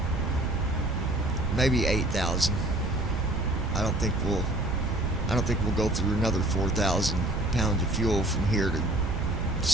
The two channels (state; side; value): noise; right; rumble, 3 dB below the sound